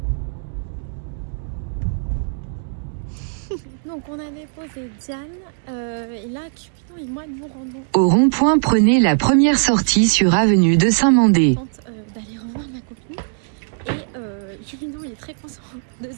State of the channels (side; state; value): left; silent; 65 dB below the other